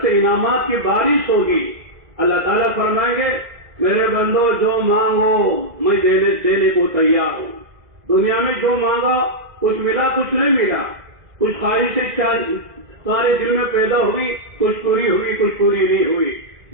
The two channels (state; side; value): late; left; 2.0 ms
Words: سے انعامات کی بارش ہوگی. اللہ تعالیٰ فرمائیں گے میرے بندو جو مانگو میں دینے کو تیار ہوں. دنیا میں جو مانگا کچھ ملا کچھ نہیں ملا، کچھ خواہشیں سارے دل میں پیدا ہوئی، کچھ پوری ہوئی کچھ پوری نہیں ہوئی.